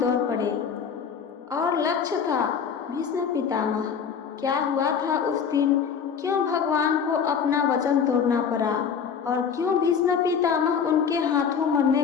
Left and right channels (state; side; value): quieter; right; 6.9 dB